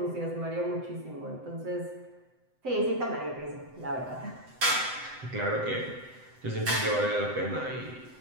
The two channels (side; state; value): left; late; 7.8 ms